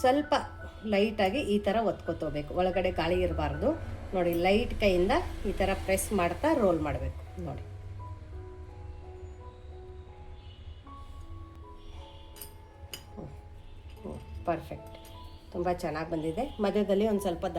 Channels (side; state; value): both; identical; correlation 1.00